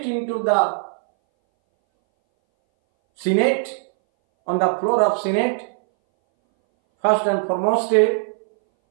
into the Senate, on the floor of Senate, first and foremost,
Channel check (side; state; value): left; silent; 62 dB below the other